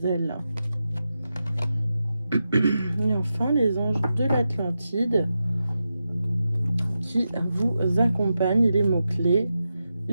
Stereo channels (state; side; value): inverted; both; correlation -0.89